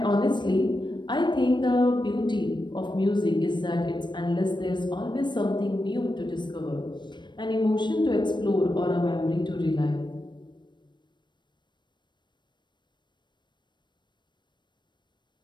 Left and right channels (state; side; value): late; right; 0.22 ms